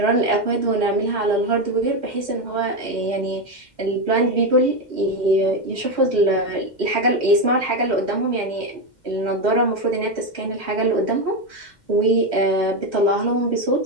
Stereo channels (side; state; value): right; late; 2.1 ms